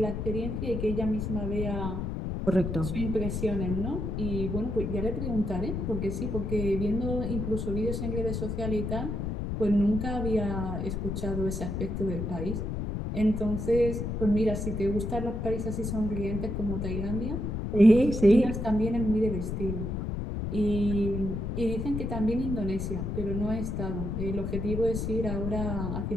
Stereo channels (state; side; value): noise; left; rumble, 3 dB below the sound